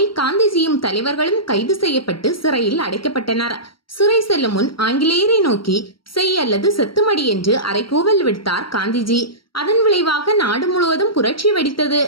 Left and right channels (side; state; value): right; late; 0.74 ms